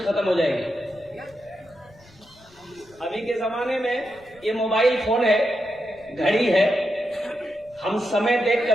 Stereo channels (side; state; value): left; noise; rumble, 28 dB below the sound